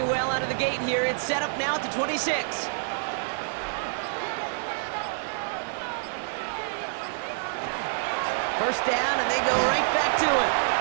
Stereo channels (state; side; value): silent; left; digital silence